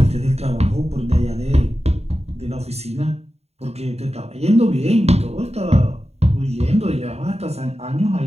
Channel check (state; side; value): late; left; 0.31 ms